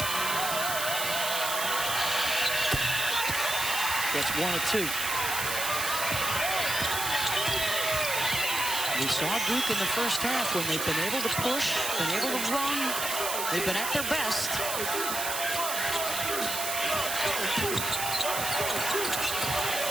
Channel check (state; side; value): noise; right; hiss, 2 dB below the sound